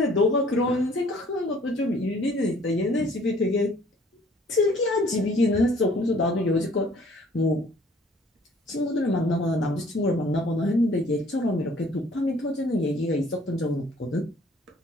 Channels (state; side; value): normal; both; correlation 0.57